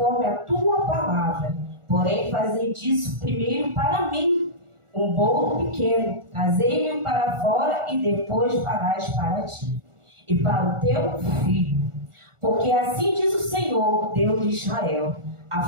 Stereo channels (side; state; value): left; late; 1.4 ms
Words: a tua palavra, porém fazei disso primeiro para mim um bolo pequeno, trazei-me para fora e depois farás para ti e para o teu filho. Porque assim diz o Senhor, Deus de Israel: a